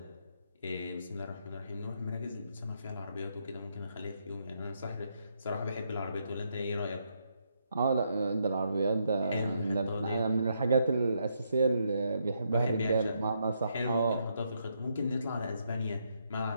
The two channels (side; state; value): both; inverted; correlation -0.77